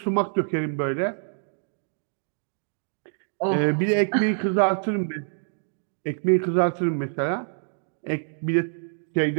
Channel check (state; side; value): silent; left; digital silence